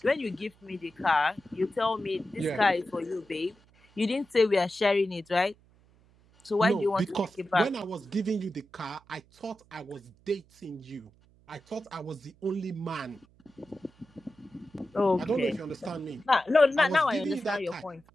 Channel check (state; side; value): noise; right; hum, 30 dB below the sound